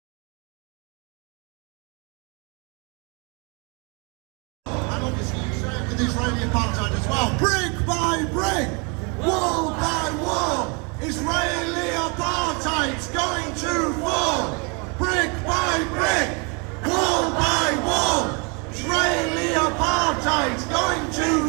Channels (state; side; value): quieter; left; 32.7 dB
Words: and obviously you say it with Israeli apartheid as well. Brick by brick, wall by wall, Israeli apartheid's going to fall. Brick by brick, wall by wall, Israeli apartheid's going